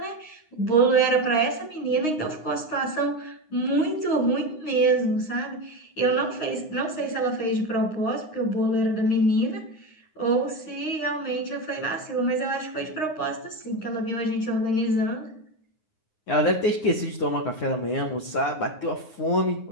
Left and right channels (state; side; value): late; right; 9.6 ms